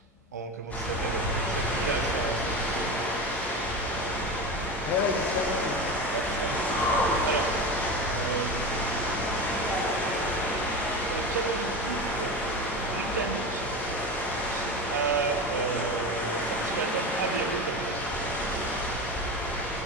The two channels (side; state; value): both; normal; correlation 0.26